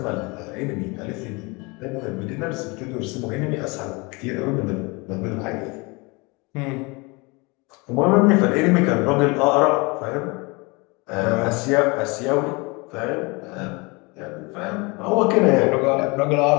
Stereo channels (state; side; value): quieter; right; 27.1 dB